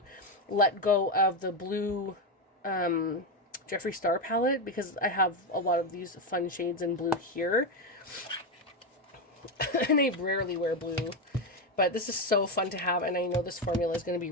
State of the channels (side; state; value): both; normal; correlation 0.10